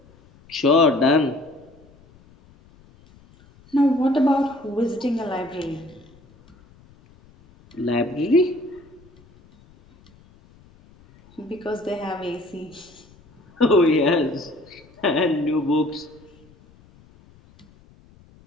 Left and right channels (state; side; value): noise; left; rumble, 27 dB below the sound